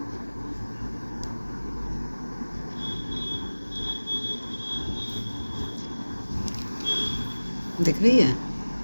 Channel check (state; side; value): inverted; both; correlation -1.00